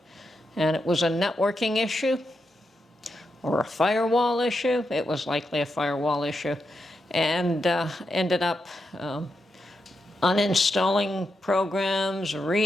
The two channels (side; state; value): both; normal; correlation 0.85